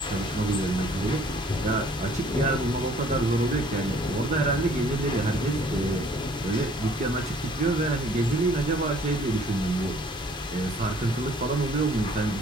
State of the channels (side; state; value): both; normal; correlation 0.57